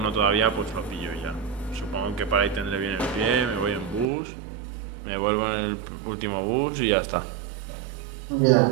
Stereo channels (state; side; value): drops out; left; at 4.0 s